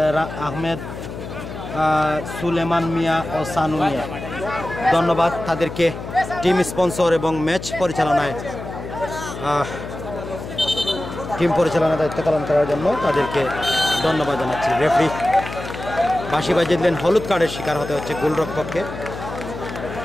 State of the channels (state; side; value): noise; left; hum, 10 dB below the sound